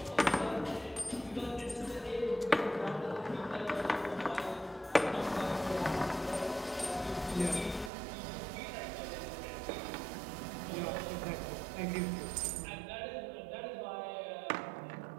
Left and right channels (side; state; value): left; drops out; at 7.9 s